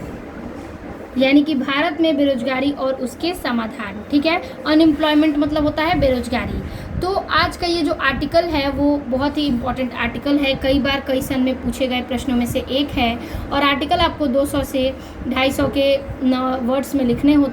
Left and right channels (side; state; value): both; identical; correlation 1.00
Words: कि भारत में बेरोजगारी और उसके समाधान। ठीक है, अनएम्प्लॉयमेंट मतलब होता है बेरोजगारी। तो आज का ये जो आर्टिकल है वो बहुत ही इम्पोर्टेंट आर्टिकल है, कई बार कई सन में पूछे गए प्रश्नों में से एक है। और आर्टिकल आपको 200 से 250 के वर्ड्स में लिखने